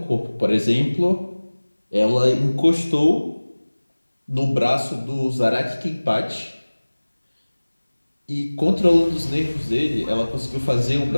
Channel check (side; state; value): both; inverted; correlation -1.00